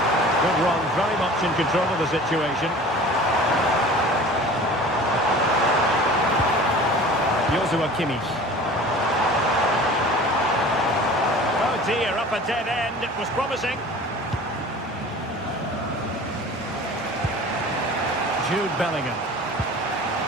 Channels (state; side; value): normal; both; correlation 0.42